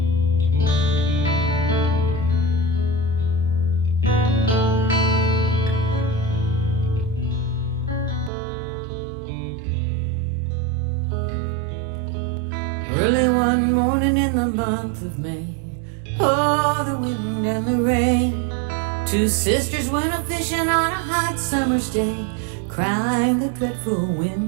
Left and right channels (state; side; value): drops out; left; at 8.3 s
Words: Early one morning in the month of May, oh, the wind and the rain. Two sisters went a fishing on a hot summer's day, crying the dreadful